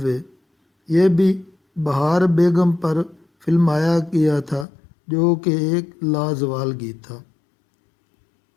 وے، یہ بھی بہار بیگم پر فلمایا گیا تھا، جو کہ ایک لازوال گیت تھا۔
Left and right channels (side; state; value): right; drops out; at 4.7 s